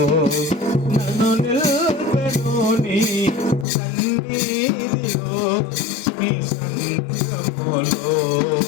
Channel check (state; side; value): drops out; right; at 3.7 s